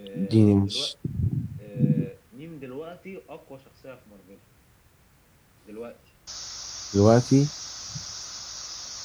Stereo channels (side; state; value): both; identical; correlation 1.00